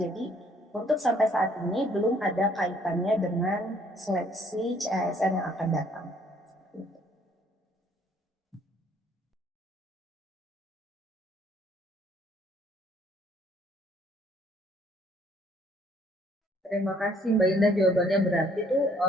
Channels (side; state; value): both; normal; correlation 0.62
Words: untuk sampai saat ini belum ada kaitannya dengan seleksi CASN yang akan datang. Terima kasih Mbak Indah, jawabannya berarti tuh